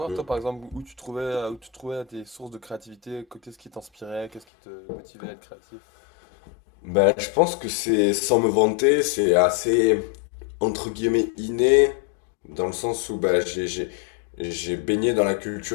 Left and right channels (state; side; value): drops out; right; at 4.5 s